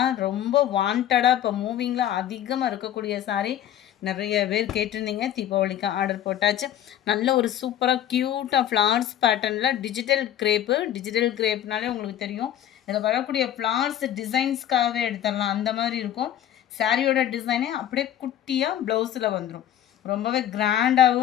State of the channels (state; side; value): quieter; right; 11.2 dB